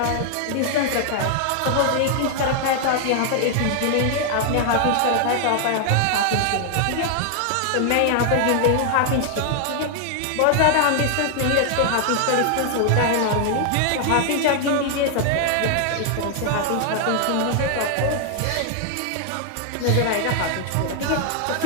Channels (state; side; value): different; both; correlation 0.00